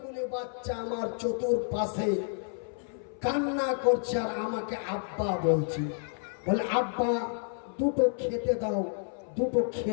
বাচ্চা আমার চতুর্পাশে কান্না করছে আর আমাকে আব্বা বলছি। বলে আব্বা দুটো খেতে দাও, দুটো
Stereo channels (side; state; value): right; silent; 58 dB below the other